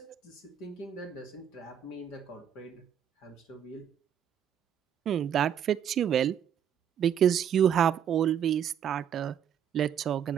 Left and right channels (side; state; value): left; quieter; 9.0 dB